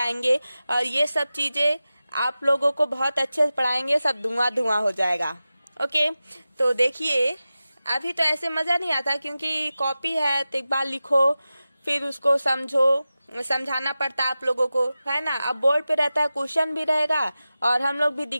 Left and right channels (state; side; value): inverted; both; correlation -0.95